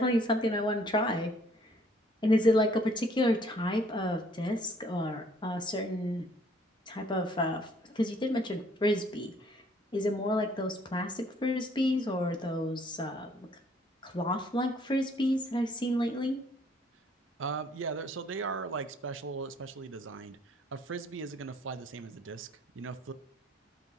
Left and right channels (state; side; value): normal; both; correlation 0.61